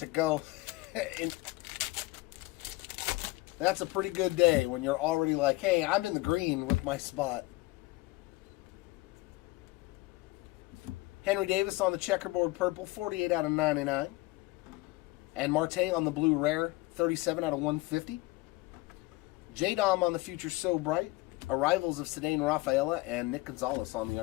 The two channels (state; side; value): quieter; right; 21.2 dB